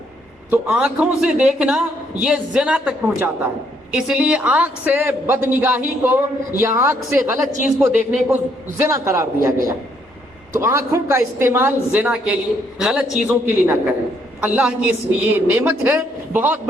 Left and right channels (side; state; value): both; normal; correlation 0.70